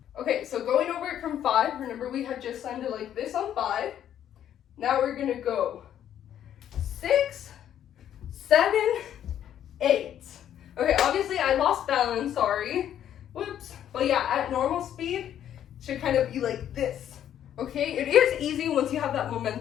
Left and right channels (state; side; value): quieter; right; 10.4 dB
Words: Okay, so going over it from 5, remember we had just landed like this on 5. Now we're gonna go 6, 7, 8. Okay, obviously I lost balance, sorry. Whoops. But yeah, at normal speed, it should kind of be like this. Okay, it is easy once you have that